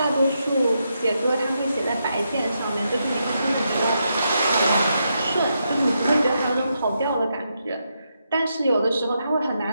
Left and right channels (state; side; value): inverted; both; correlation -0.82